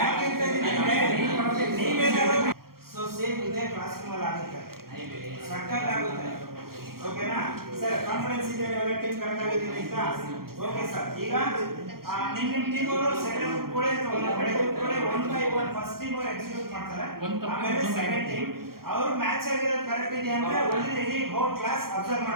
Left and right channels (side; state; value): left; late; 0.93 ms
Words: ನೀವೇನಾದ್ರು ಸೊ ಸೇಮ್ ಇದೆ ಕ್ಲಾಸಿಂಗ್ ಅಲ್ಲಿ ಆಗುತ್ತೆ, ಸಕ್ಕತ್ ಆಗುತ್ತೆ. ಓಕೆನಾ ಸರ್? ಕಾನ್ಫಿಡೆನ್ಸ್ ಇದೆ, ಎಲ್ಲ ಟೀಮ್ ಕರೆಕ್ಟ್ ಆಗಿದ್ದೀರಿ ಅಂತ? Okay sir. ಈಗ ನಿಮ್ಮ ಟೀಮ್ ಅವರು ಸೆಕೆಂಡ್ ಗ್ರೂಪ್ ಕೂಡ ಒಂದು ಕಡೆ ಕೂಡ 1 by 1 ಫಸ್ಟ್ ಟೀಮ್ ಅವರು ಎಕ್ಸಿಕ್ಯೂಟ್ ಮಾಡ್ತಾರೆ, ಆಮೇಲೆ ಸೆಕೆಂಡ್ ಟೀಮ್ ಅವರು ಮ್ಯಾಚ್ ಆಗಿರೋದು ಕರೆಕ್ಟ್ ಇದೆ ಅಂದ್ರೆ ಓನ್ಲಿ ಇಡೀ ಹೋಲ್ ಕ್ಲಾಸ್ ಅಬ್ಸರ್ವ್